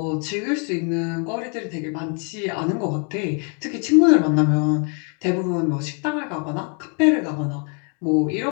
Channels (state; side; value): quieter; right; 38.9 dB